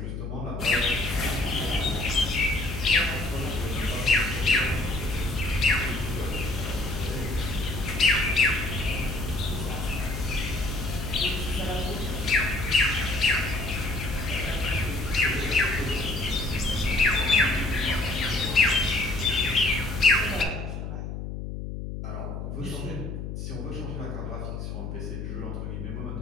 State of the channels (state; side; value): noise; left; hum, 6 dB below the sound